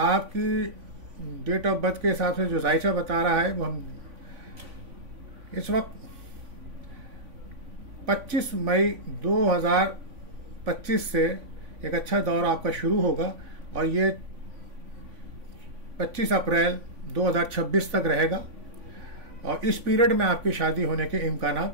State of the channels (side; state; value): left; late; 3.5 ms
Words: آپ کی ڈیٹ آف برتھ کے حساب سے جو ذائچہ بتا رہا ہے وہ ہم اس وقت 25 مئی 2025 سے ایک اچھا دور آپ کا شروع ہوگا، اور یہ 25 اپریل 2026 تک رہے گا، اور اس پیریڈ میں آپ کی شادی ہونے کے